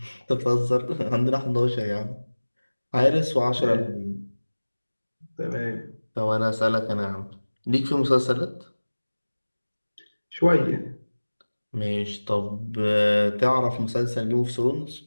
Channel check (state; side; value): inverted; both; correlation -1.00